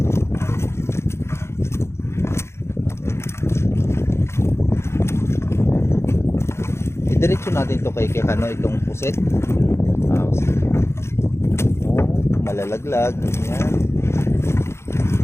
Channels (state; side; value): late; right; 0.13 ms